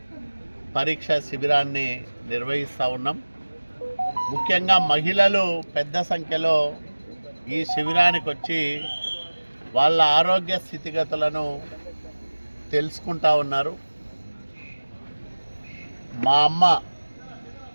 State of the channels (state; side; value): inverted; both; correlation -1.00